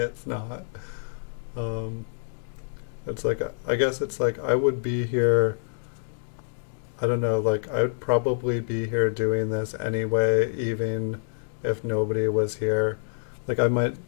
not. It's like, I guess it's like I would be here, I don't know, like I would probably be here doing this anyway, even if nobody was here. Like I might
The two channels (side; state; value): right; silent; digital silence